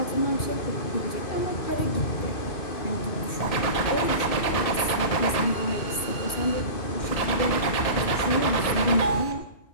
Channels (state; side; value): late; right; 2.4 ms